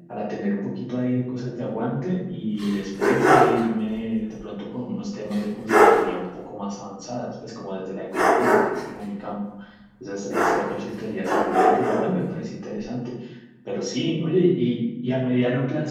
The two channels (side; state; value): both; identical; correlation 1.00